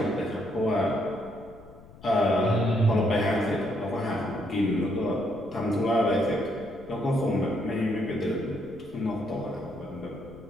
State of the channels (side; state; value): left; noise; rumble, 21 dB below the sound